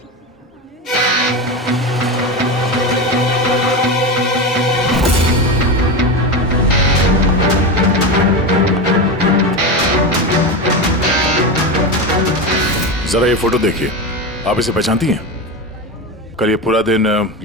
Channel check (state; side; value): normal; both; correlation 0.19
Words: जरा ये फोटो देखिए, आप इसे पहचानती हैं? कल ये पूरा दिन